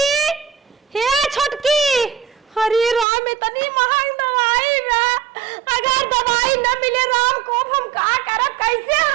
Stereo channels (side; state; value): left; drops out; at 3.1 s